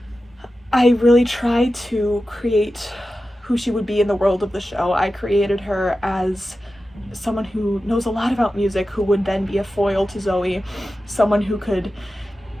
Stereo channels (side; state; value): both; normal; correlation 0.93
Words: I really try to create who she would be in the world of the show. I created her as someone who knows a lot about music, who would then be a foil to Zoey, someone who could